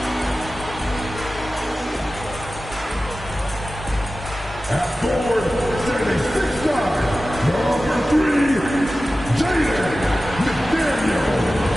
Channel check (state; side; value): normal; both; correlation 0.95